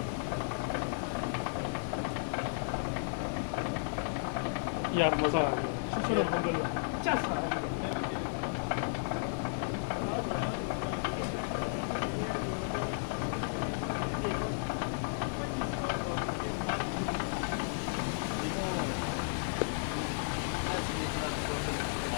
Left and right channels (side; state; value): right; silent; digital silence